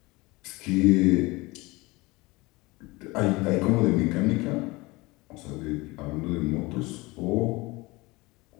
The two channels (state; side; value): quieter; right; 22.9 dB